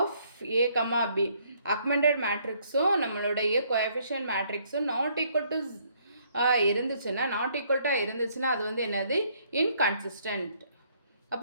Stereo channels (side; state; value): both; inverted; correlation -0.67